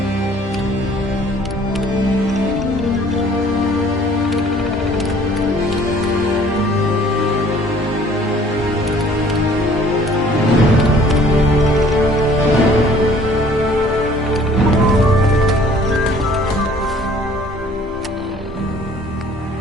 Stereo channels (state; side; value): normal; both; correlation 0.54